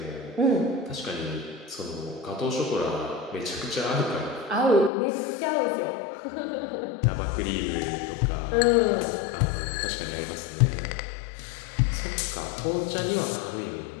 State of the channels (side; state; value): right; drops out; at 4.9 s